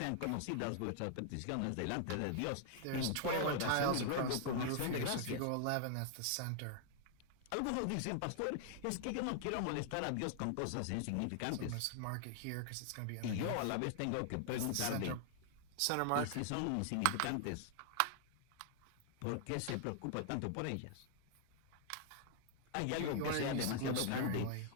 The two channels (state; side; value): different; both; correlation 0.00